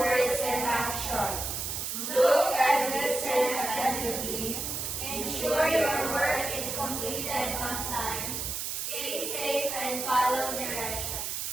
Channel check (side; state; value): right; noise; hiss, 3 dB below the sound